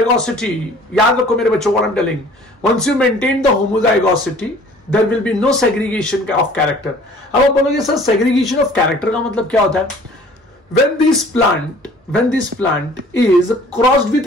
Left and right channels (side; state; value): both; normal; correlation 0.51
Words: याद रखो मेरे बच्चों, what I'm telling, once you maintain the homozygosity, there will be no segregation of character. अब आप बोलोगे सर segregation of character का मतलब क्या होता है? When this plant is crossed